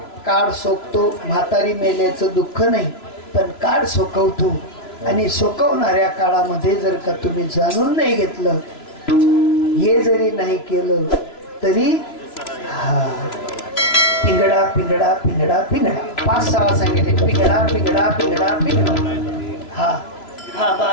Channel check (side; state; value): right; late; 3.0 ms